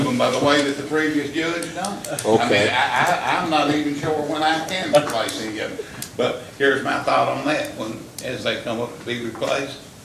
them by the way that the previous judge done. I mean, Okay. I'm not even sure when I can replace any of them. But here's my thought on that, as they come up to be replaced,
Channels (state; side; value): identical; both; correlation 1.00